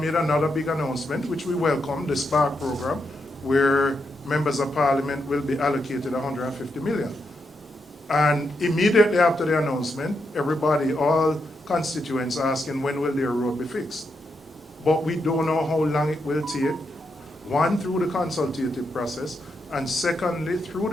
another big announcement, which we welcome, the SPARK program, where members of Parliament will be allocated 150 million. And immediately after the announcement, everybody, all constituents asking when will their road be fixed. But we don't know how long it will take, one, through the consultative process, and secondly, through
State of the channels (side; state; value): both; normal; correlation 0.83